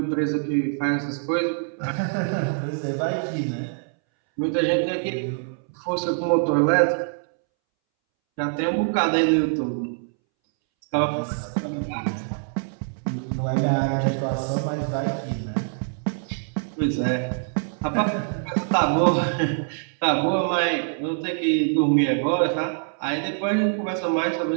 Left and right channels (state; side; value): silent; left; 62 dB below the other